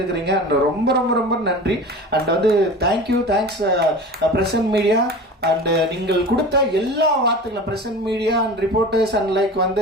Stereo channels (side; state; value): both; normal; correlation 0.35